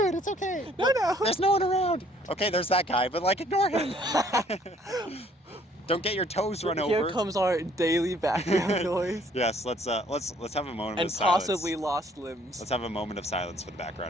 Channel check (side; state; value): both; normal; correlation 0.61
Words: it. It's okay. No. There's no one around. Okay, there's that guy, but like ignore him. Don't get your toes run over. Here comes our daily background noise. Yes, let's have a moment and of silence. And possibly lost limbs. Let's have a moment of silence for the